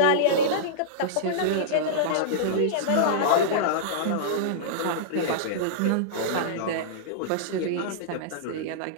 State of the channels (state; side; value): different; both; correlation -0.02